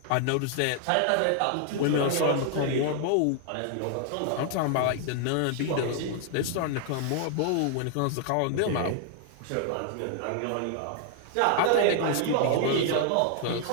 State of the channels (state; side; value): different; both; correlation 0.00